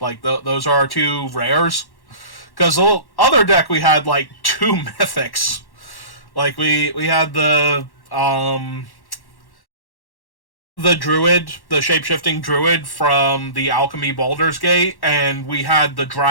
those are our 2 rares. Because the other deck we had, like, 2 mythics. Like, we had the druid, the shape-shifting druid from the Alchemy Baldur's Gate, and we had the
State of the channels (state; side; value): late; right; 1.1 ms